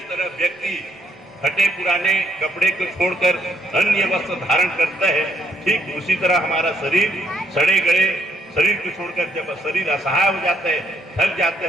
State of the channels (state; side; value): normal; both; correlation 0.72